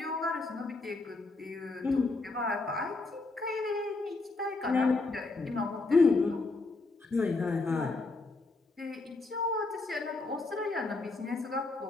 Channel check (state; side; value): quieter; right; 3.4 dB